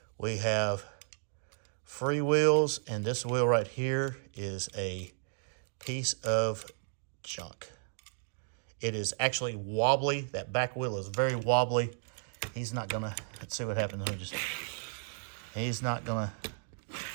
We have free wheels, and this wheel right here is a piece of junk. It is actually wobbly. That back wheel is very wobbly. He's not gonna, let's see what happens. He's not gonna,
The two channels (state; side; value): silent; left; digital silence